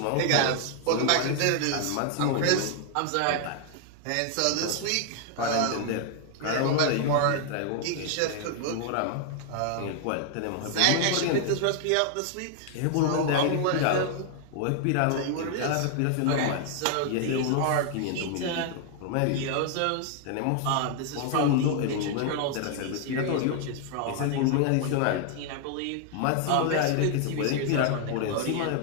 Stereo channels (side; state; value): both; different; correlation 0.00